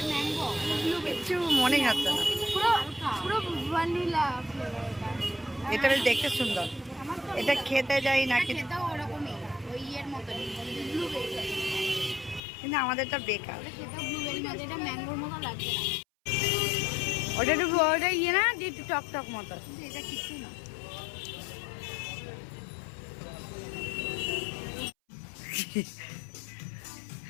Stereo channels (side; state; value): right; drops out; at 12.4 s